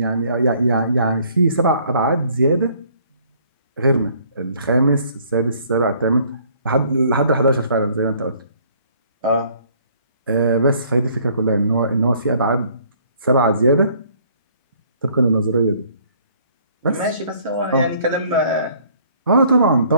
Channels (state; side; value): inverted; both; correlation -0.60